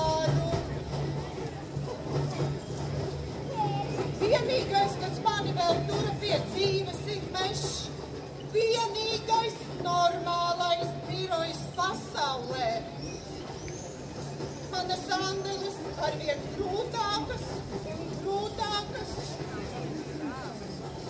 Vienīgais, kas mani vēl tura pie dzīves, ir mešs. Vienīgais normālais birojs pasaulē. Manas andeles arvien grūtākas un grūtākas.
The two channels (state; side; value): identical; both; correlation 1.00